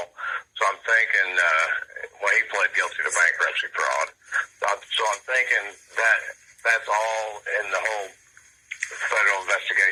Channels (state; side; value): identical; both; correlation 1.00